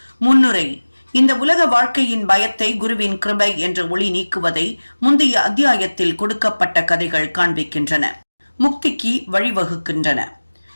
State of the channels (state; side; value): inverted; both; correlation -1.00